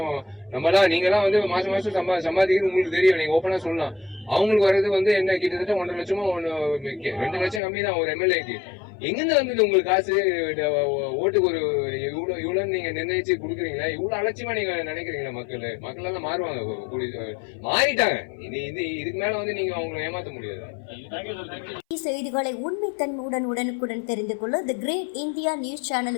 நம்மளாம் நீங்களாம் வந்து மாசம் சம்பாதிக்கிறது உங்களுக்கு தெரியும். நீங்க ஓப்பனா சொல்லலாம். அவங்களுக்கு வர்றது வந்து என்ன கிட்டத்தட்ட 1.5 லட்சமோ 2 லட்சம் கம்மி தான் ஒரு எம்எல்ஏக்கு. எங்கிருந்து வந்தது உங்களுக்கு காசு? ஓட்டுக்கு ஒரு இவ்வளவு நீங்க நிர்ணயிச்சு கொடுக்குறீங்களா? இவ்வளவு அலட்சியமா நீங்க நினைக்கிறீங்களா? மக்கள் எல்லாம் மாறுவாங்க, மாறிட்டாங்க. இதுக்கு மேல வந்து நீங்க அவங்களை ஏமாத்த முடியாது. செய்திகளை உண்மைத்தன்மையுடன் உடனுக்குடன் தெரிந்து கொள்ள தி கிரேட் இந்தியா நியூஸ்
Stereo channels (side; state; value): right; drops out; at 7.6 s